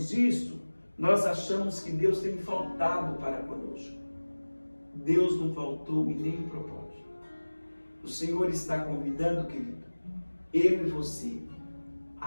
isso, nós achamos que Deus tem faltado para conosco. Deus não faltou em nenhum propósito. O Senhor está convidando, querido, eu e você,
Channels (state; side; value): inverted; both; correlation -1.00